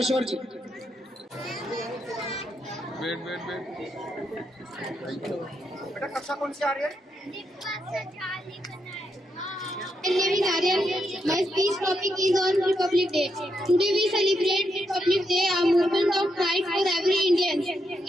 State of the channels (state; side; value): normal; both; correlation 0.81